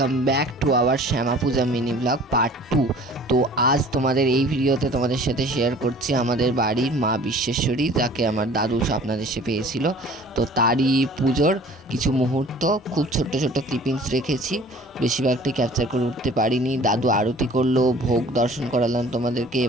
back to our Shyama Puja mini blog part 2। তো আজ তোমাদের এই ভিডিওতে তোমাদের সাথে শেয়ার করছি আমাদের বাড়ির মা বিশ্বেশ্বরী, যাকে আমার দাদু স্বপ্নাদেশে পেয়েছিল। তো তারই পুজোর কিছু মুহূর্ত, খুব ছোট্ট ছোট্ট ক্লিপিংস রেখেছি, বেশিরভাগটি ক্যাপচার করে উঠতে পারিনি। দাদু আরতি করলো, ভোগ দর্শন করালাম তোমাদেরকে।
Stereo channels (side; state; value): both; normal; correlation 0.48